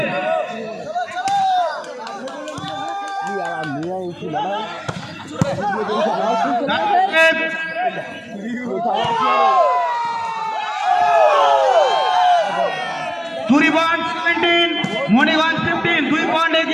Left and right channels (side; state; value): both; identical; correlation 1.00